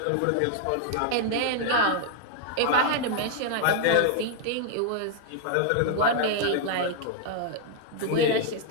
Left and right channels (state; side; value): different; both; correlation -0.01